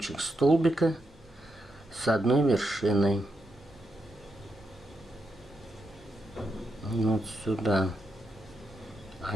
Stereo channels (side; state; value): both; normal; correlation 0.84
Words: столбика с одной вершиной. Вот сюда